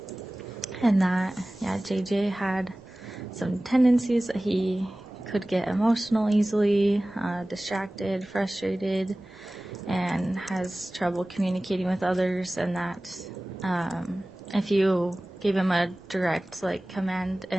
and that, JJ had some tendencies that he could get emotional easily, distracted, frustrated, and has trouble communicating with others, and that if you gave him a direct command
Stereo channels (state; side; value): normal; both; correlation 0.98